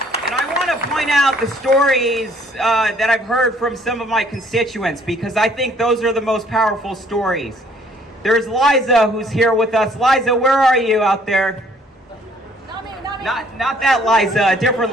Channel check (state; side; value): normal; both; correlation 0.61